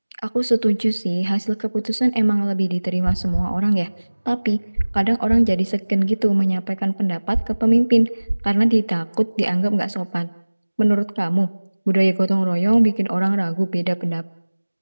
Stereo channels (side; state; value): both; inverted; correlation -1.00